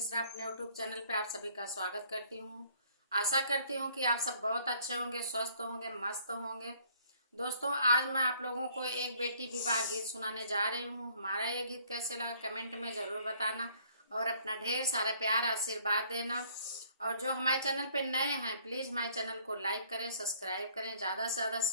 अपने यूट्यूब चैनल पे आप सभी का स्वागत करती हूँ। आशा करती हूँ कि आप सब बहुत अच्छे होंगे, स्वस्थ होंगे, मस्त होंगे। दोस्तों, आज मैं आप लोगों को एक बेटी विवाह गीत सुनाने जा रही हूँ। हमारा ये गीत कैसे लगा कमेंट में ज़रूर बताना और अपना ढेर सारा प्यार आशीर्वाद देना। और जो हमारे चैनल पे नए हैं, प्लीज़ हमारे चैनल को लाइक करें, सब्सक्राइब करें, ज़्यादा से ज़्यादा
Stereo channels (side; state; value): both; inverted; correlation -0.60